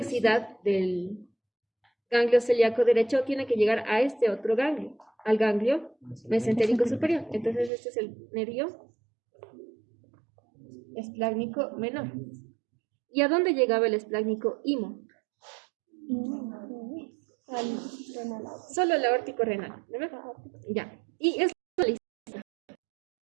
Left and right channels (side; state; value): left; drops out; at 7.7 s